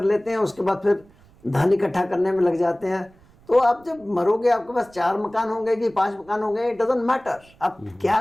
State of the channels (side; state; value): right; noise; rumble, 28 dB below the sound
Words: लेते हैं, उसके बाद फिर धन इकट्ठा करने में लग जाते हैं। तो आप जब मरोगे आपके पास 4 मकान होंगे कि 5 मकान होंगे, इट डजंट मैटर। आप क्या